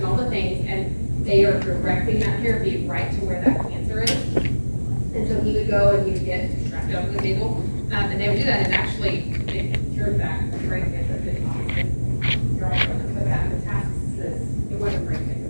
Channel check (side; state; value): both; inverted; correlation -1.00